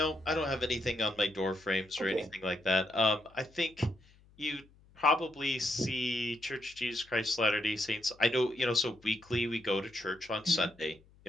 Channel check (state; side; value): noise; left; hum, 28 dB below the sound